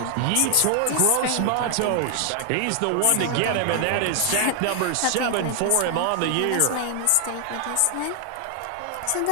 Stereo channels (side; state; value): both; different; correlation 0.00